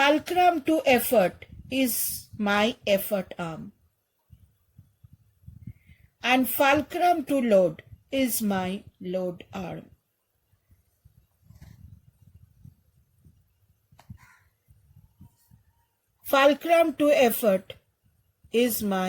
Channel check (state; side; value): identical; both; correlation 1.00